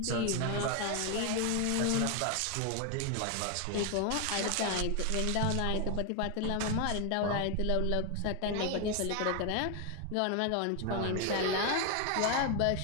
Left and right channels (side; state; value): both; different; correlation 0.01